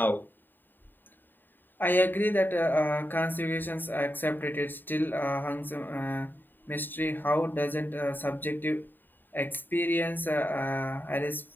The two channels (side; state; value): right; late; 0.092 ms